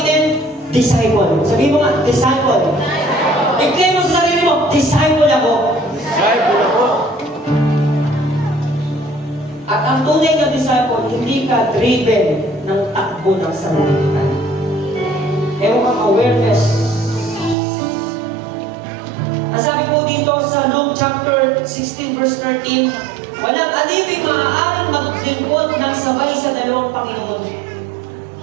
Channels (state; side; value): drops out; left; at 17.6 s